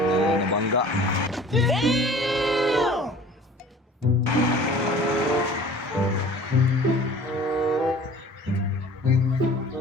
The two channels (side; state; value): both; normal; correlation 0.46